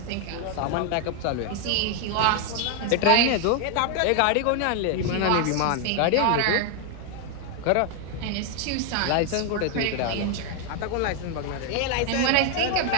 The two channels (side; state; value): both; different; correlation 0.00